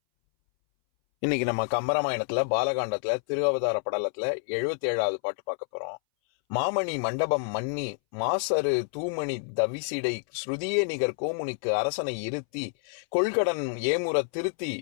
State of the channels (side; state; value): right; silent; 59 dB below the other